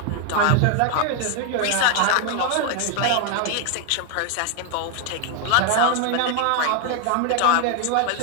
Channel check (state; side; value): different; both; correlation 0.01